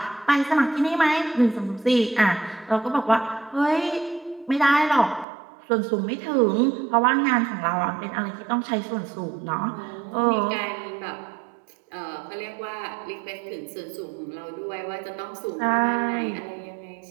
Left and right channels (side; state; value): left; drops out; at 5.2 s